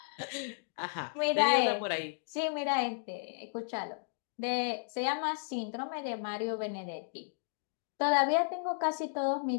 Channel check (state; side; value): silent; right; digital silence